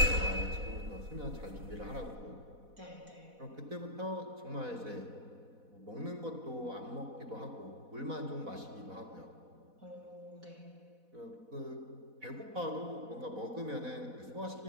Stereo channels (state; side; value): late; left; 4.1 ms